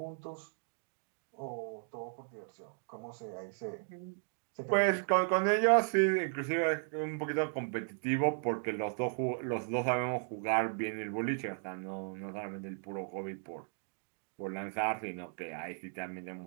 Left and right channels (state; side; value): silent; left; 54 dB below the other